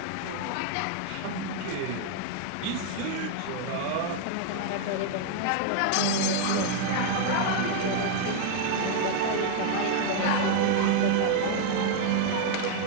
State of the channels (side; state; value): both; different; correlation 0.00